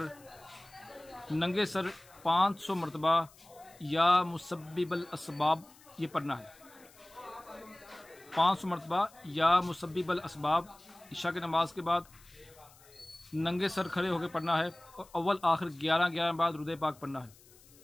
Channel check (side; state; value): left; noise; hiss, 25 dB below the sound